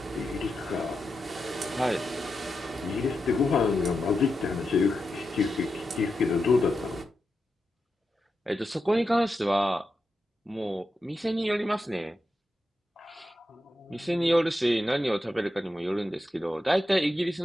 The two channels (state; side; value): normal; both; correlation 0.88